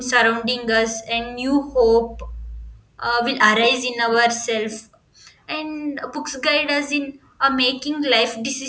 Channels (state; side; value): identical; both; correlation 1.00